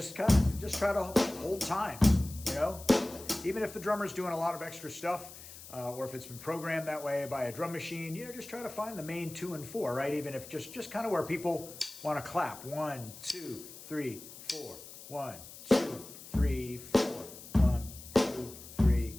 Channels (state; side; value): noise; left; hiss, 15 dB below the sound